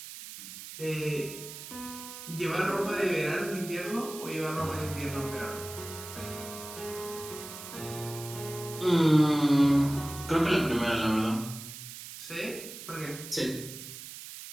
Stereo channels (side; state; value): right; noise; hiss, 12 dB below the sound